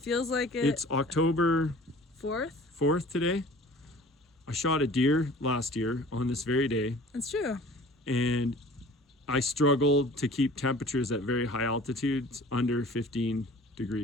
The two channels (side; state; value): both; normal; correlation 0.46